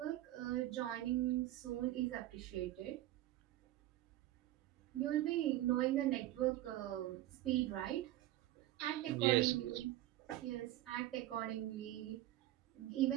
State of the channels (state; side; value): quieter; left; 14.9 dB